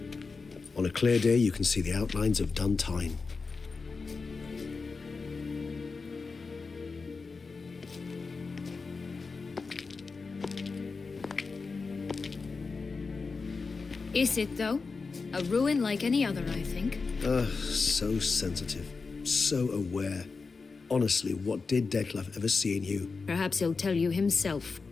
On a clear day, you can see the outlines of Duntine. Is it, though? A ruin like any other, I think. So sensitive. So aware. Honestly, what did Detlef ever see in you? Perhaps he'll tell you himself.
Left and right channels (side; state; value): right; quieter; 4.4 dB